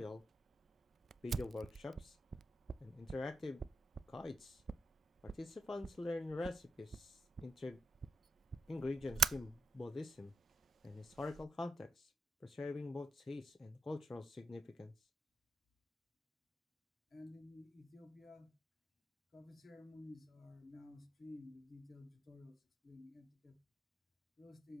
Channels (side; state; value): both; normal; correlation 0.85